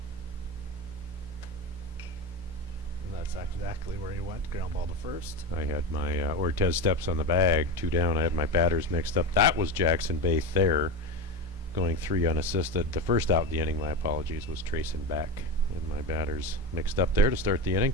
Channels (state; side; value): normal; both; correlation 0.20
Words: And that's exactly where he went. Ground ball to first. I had my Ortez steps on the bag, 2 down. I had my batters mixed up. That was Jackson Baith there, going 3 unassisted. The first out of the inning, my apologies, was Trayson Beck. And my batters mixed up there to start the inning,